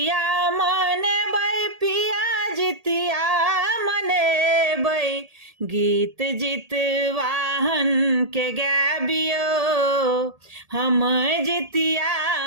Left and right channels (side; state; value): left; late; 1.8 ms